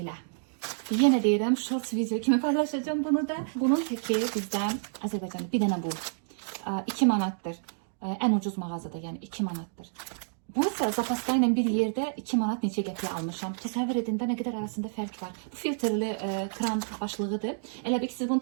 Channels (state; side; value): silent; left; digital silence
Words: Yenə deyirəm, shorts video kimi paylaşacağım bunu da. Bunun təki bizdən Azərbaycanda bir dənə bu. 2 manatdır. Ən ucuz mağazada, yəni 2 manatdır. Bu isə zapaska ilə bir yerdə 2 manat neçə qəpiyə almışam. Təsəvvür edin də nə qədər arasında fərq var. Bu filtrli kran başlığıdır. Elə bir ki, siz bunu